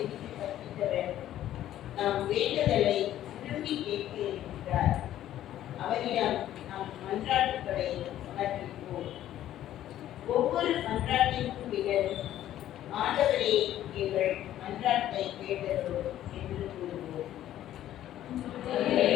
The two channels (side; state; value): right; quieter; 12.5 dB